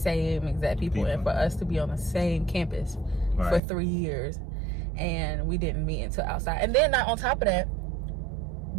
exact people, and for us to be on the same campus for 3 years, and we didn't meet until outside. And then on top of that,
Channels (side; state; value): left; drops out; at 3.6 s